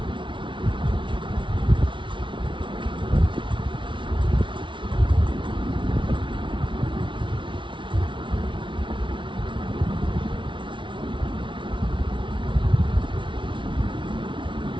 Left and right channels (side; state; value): left; late; 0.24 ms